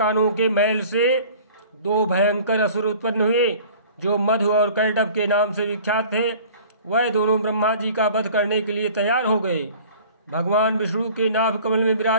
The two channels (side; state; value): both; inverted; correlation -0.47